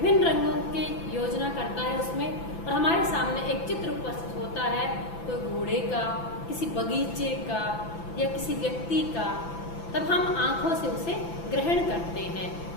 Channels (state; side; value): late; right; 5.9 ms